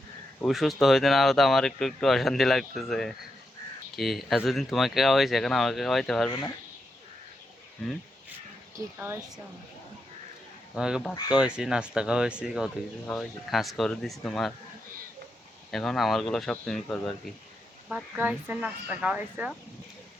সুস্থ হইতে না হতে আমার একটু একটু অশান্তি লাগতেছে। কি এতদিন তোমাকে খাওয়াইছে, এখন আমাকে খাওয়াইতে পারবে না? হুম। কি খাওয়াইছো আমাকে? তোমাকে ভাত খাওয়াইছি, নাস্তা খাওয়াইছি, কত কিছু খাওয়াইছি, খাস করে দিছি তোমার। এখন আমারগুলো সব তুমি করবে আর কি। ভাত হুম। খাওয়াইছো, নাস্তা খাওয়াইছো?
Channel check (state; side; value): normal; both; correlation 0.84